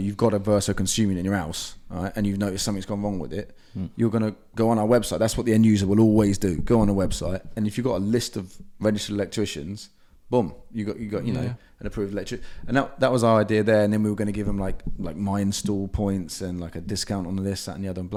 got a Verso consuming in your house, all right, and you've noticed something's gone wrong with it, you're going to go on our website. That's what the end user will always do. Go on a website, and if you've got a list of registered electricians, boom, you got an approved electrician. And that was our idea there. And then we were going to give them like my install points and like a discount on this, that, and the other, and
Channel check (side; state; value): both; identical; correlation 1.00